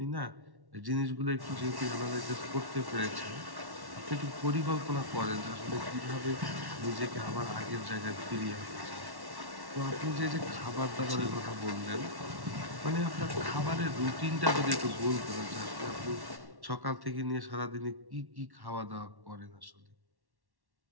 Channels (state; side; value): late; left; 1.1 ms